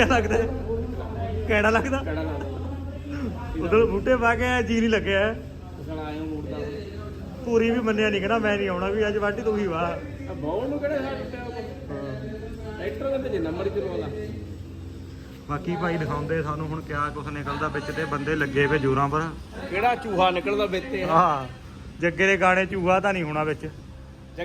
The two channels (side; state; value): both; identical; correlation 1.00